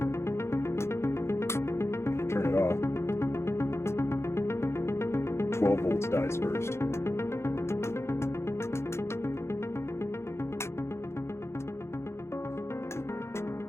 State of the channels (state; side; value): late; right; 0.13 ms